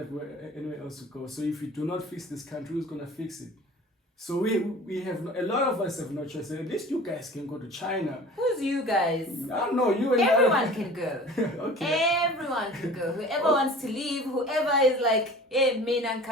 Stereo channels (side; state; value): both; normal; correlation 0.42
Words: anywhere else to go. So if we do not fix this country, who's gonna fix it? So we have a lot of us have no choice. At least you guys can go to China. Who's you guys? I don't know you and Everyone can go. Okay. Everyone can go. Whoever wants to leave, whoever is like, hey, mina